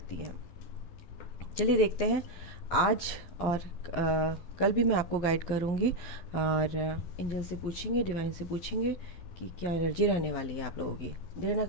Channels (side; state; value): right; late; 11 ms